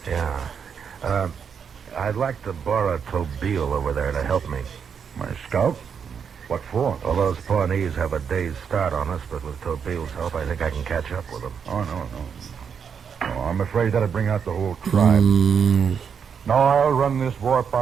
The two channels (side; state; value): left; quieter; 6.9 dB